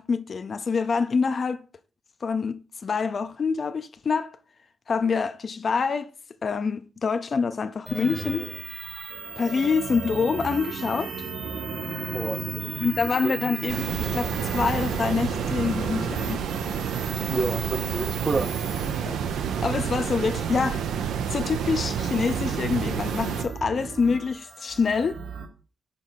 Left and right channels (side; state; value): both; normal; correlation 0.79